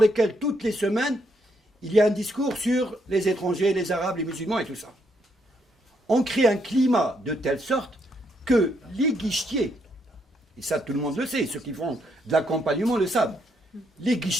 toutes les semaines, il y a un discours sur les étrangers, les arabes, les musulmans et tout ça. On crée un climat de telle sorte que les guichetiers, et ça tout le monde le sait, ceux qui font de l'accompagnement le savent, les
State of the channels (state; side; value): normal; both; correlation 0.75